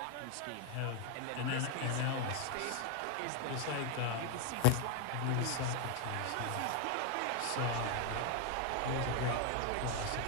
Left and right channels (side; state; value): both; different; correlation 0.01